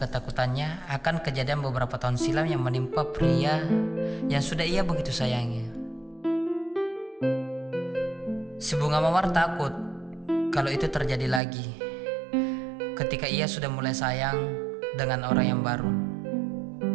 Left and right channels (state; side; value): drops out; left; at 11.4 s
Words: akan kejadian beberapa tahun silam yang menimpa pria yang sudah ia begitu sayangi. Si bunga mawar takut kalau itu terjadi lagi ketika ia sudah mulai sayang dengan orang yang baru.